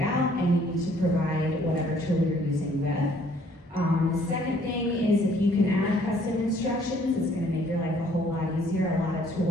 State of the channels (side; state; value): both; normal; correlation 0.61